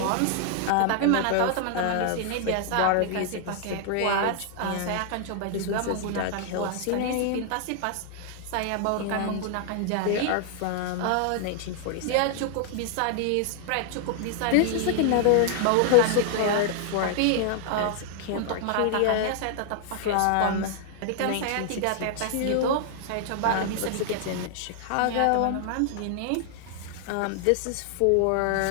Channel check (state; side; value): different; both; correlation 0.00